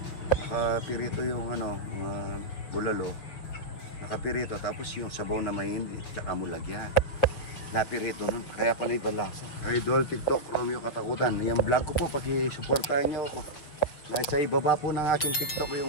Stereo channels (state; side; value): late; right; 6.7 ms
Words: nakapirito yung ano, bulalo, nakapirito, tapos yung sabaw na mahindi, tsaka mo lagyan. Napirito nun, kaya pala ibang lasa. Idol, TikTok, Romeo Katakutan. Yung vlog ko po, pag-supportahan nyo ako. Nasa ibaba po ng aking TikTok